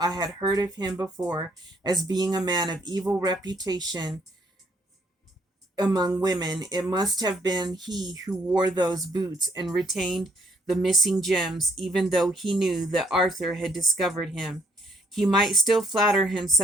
I had heard of him before as being a man of evil reputation among women. It must have been he who wore those boots and retained the missing gems, even though he knew that Arthur had discovered him. He might still flatter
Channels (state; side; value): normal; both; correlation 0.67